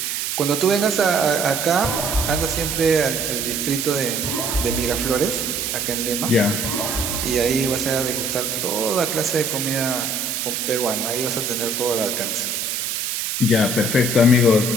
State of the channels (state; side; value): noise; right; hiss, 2 dB below the sound